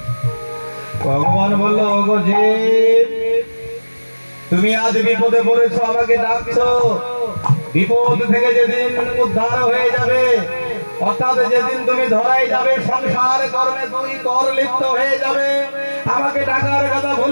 ভগবান বলল, ওগো যে তুমি আজ বিপদে পড়েছো, আমাকে ডাকছো। বিপদ থেকে যেদিন উদ্ধার হয়ে যাবে, অর্থাৎ যেদিন তুমি ধরাই যাবে, সংসার কর্মে দুই কর লিপ্ত হয়ে যাবে, আমাকে ডাকার কথা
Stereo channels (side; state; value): both; inverted; correlation -1.00